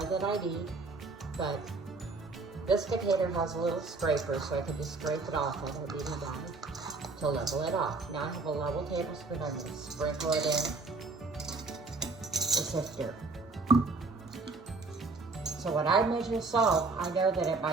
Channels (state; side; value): quieter; left; 3.8 dB